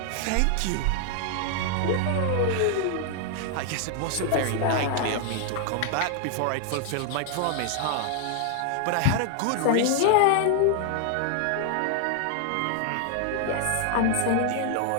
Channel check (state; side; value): different; both; correlation 0.00